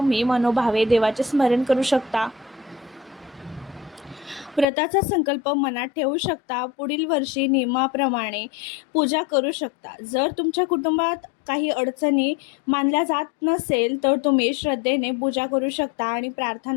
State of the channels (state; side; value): drops out; right; at 4.7 s